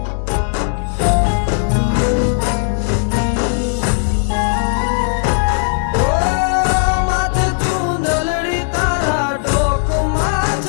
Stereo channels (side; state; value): right; silent; digital silence